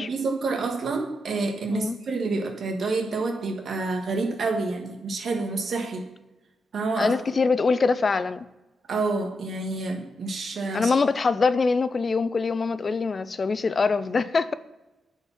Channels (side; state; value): both; normal; correlation 0.85